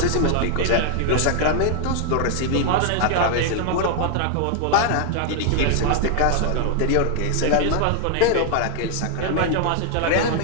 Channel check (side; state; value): both; different; correlation 0.00